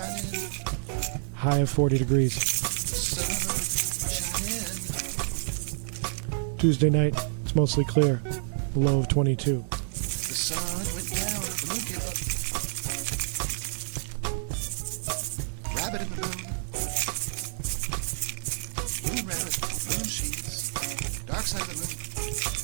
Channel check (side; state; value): left; silent; digital silence